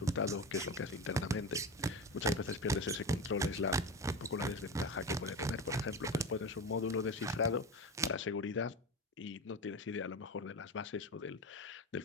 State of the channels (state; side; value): normal; both; correlation 0.24